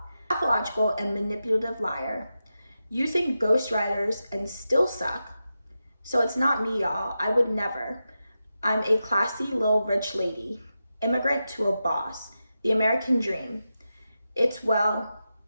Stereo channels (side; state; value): both; inverted; correlation -0.90